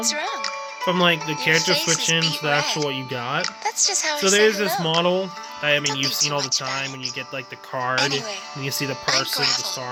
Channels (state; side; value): identical; both; correlation 1.00